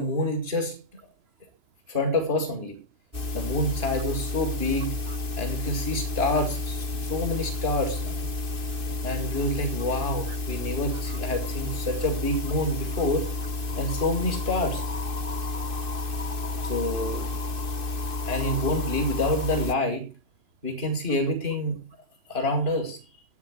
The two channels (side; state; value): left; late; 2.6 ms